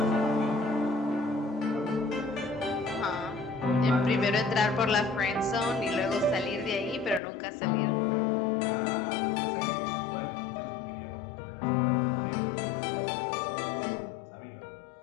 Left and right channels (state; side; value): drops out; right; at 7.2 s